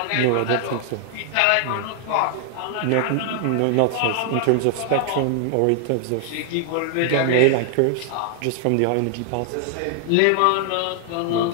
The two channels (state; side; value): different; both; correlation 0.00